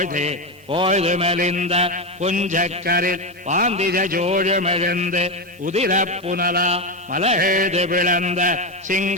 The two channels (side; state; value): both; normal; correlation 0.11